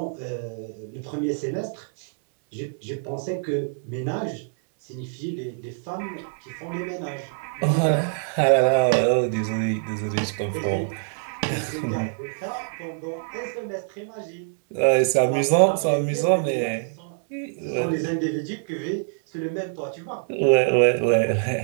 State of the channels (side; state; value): left; silent; digital silence